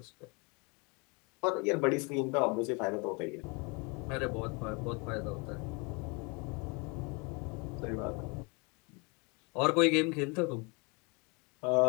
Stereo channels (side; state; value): right; quieter; 30.6 dB